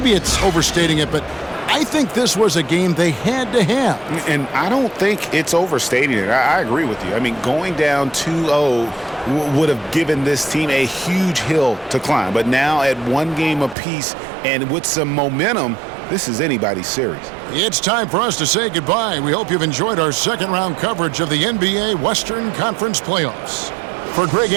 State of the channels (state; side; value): drops out; left; at 13.8 s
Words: it's overstating it, but I think this was a game they had to have. And I don't think it's overstating it. I agree with you. I mean, going down 2-0 would have given this team a huge hill to climb. But now at 1 game apiece and with some momentum, this is anybody's series. It's time for us to say goodbye. We hope you've enjoyed our second-round coverage of the NBA Western Conference Playoffs. For Greg